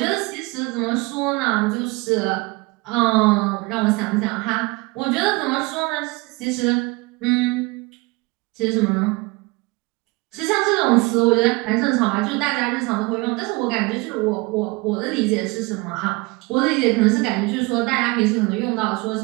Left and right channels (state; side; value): quieter; left; 25.2 dB